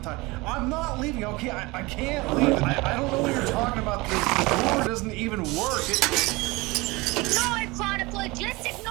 time. I'm not leaving, okay? I can't leave. I don't know what you're talking about. The door doesn't even work. Ignore it, Chronicler. Just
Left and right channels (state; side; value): quieter; left; 23.2 dB